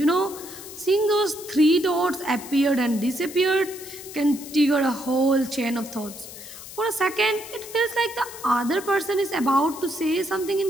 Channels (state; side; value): noise; left; hiss, 14 dB below the sound